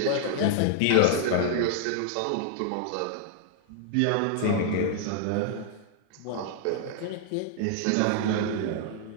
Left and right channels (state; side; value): different; both; correlation 0.00